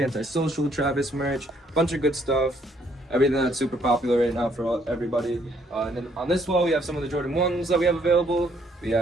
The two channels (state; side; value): normal; both; correlation 0.67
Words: Travis merch, bunch of good stuff. Everything that's super popular right now for everybody. And then on this wall, we have some of the Jordan 1s that we have available. We